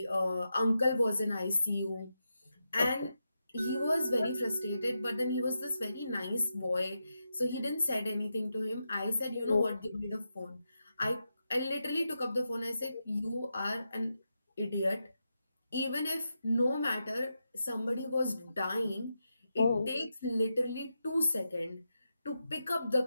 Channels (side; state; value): both; inverted; correlation -0.87